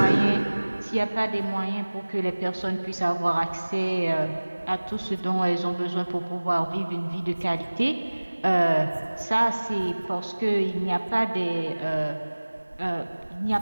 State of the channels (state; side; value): inverted; both; correlation -1.00